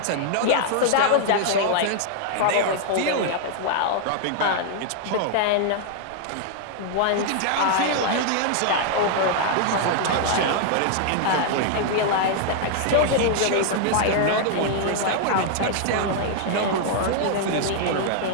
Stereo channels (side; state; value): both; different; correlation 0.00